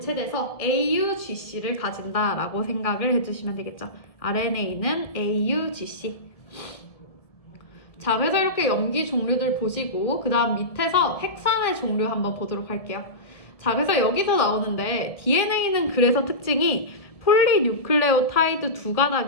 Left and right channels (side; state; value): right; late; 1.7 ms